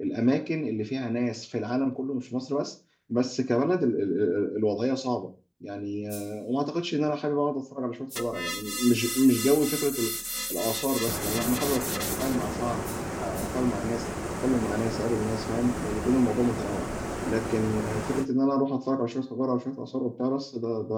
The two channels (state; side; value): identical; both; correlation 1.00